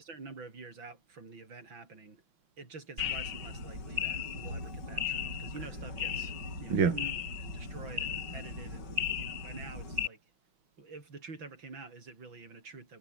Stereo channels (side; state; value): left; late; 5.9 ms